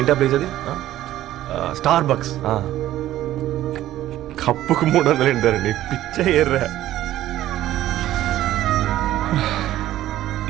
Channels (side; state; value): left; quieter; 13.8 dB